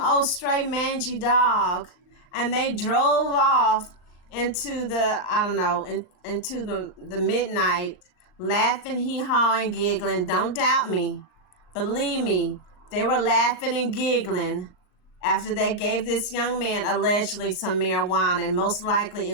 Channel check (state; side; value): late; right; 38 ms